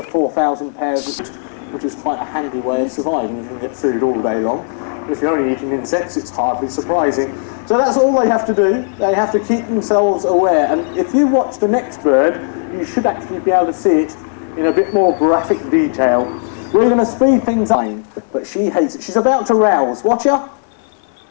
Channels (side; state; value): right; silent; 60 dB below the other